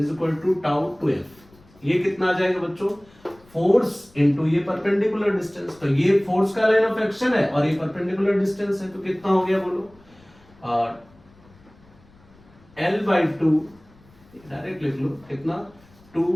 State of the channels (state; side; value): noise; left; rumble, 28 dB below the sound